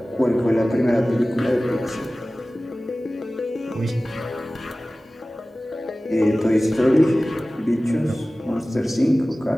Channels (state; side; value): normal; both; correlation 0.97